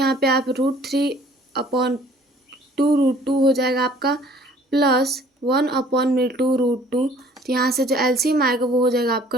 पे आप √3/2 हो जाएगा आपका प्लस 1/2 तो यहाँ से जो एलसीएम आएगा वो हो जाएगा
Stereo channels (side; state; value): both; normal; correlation 0.54